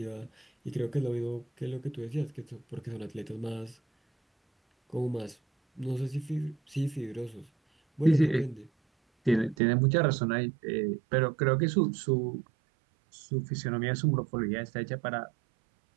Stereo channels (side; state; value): left; drops out; at 9.6 s